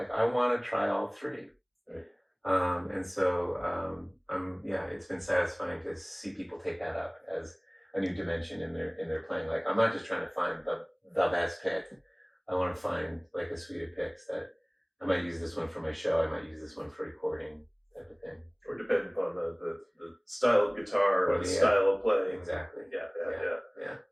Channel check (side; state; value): both; identical; correlation 1.00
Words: I want to try all 3. Right. And so it's been satisfying to see people take that up as a new dimension in their playing. Like I'm not just trying to find the best pick. I want to find like a suite of picks that I might use this one for my show. I might use this one for recording, type of thing. Or depending upon the style of guitar or the style of playing. Exactly. Yeah.